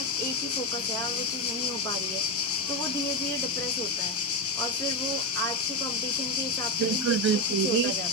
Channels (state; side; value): normal; both; correlation 0.12